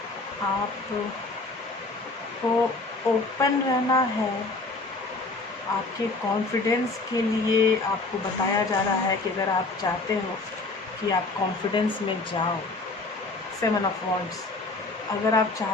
आपको ओपन रहना है। आपके कॉन्फिडेंस के लिए आपको बताया जा रहा है कि अगर आप चाहते हो कि आप कॉन्फिडेंस में जाओ, 7 ऑफ वॉन्ड्स, अगर आप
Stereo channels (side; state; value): right; quieter; 3.4 dB